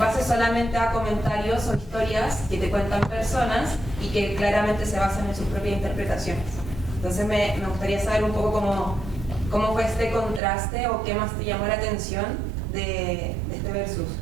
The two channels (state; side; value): drops out; left; at 10.4 s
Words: solamente a comentarios o historias que te cuentan personas y que claramente se basan en sus propias interpretaciones. Entonces me gustaría saber un poco cómo fue este contraste o qué más te llamó la atención de este versus.